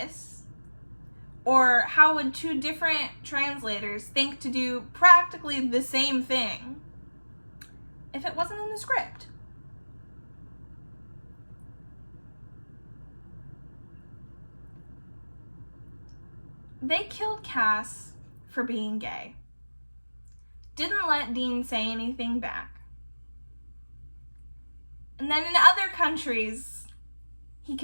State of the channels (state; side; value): inverted; both; correlation -1.00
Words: Or how would two different translators think to do practically the same thing if it wasn't in the script? They killed Cass for being gay. Didn't let Dean say anything back. And then in other countries, he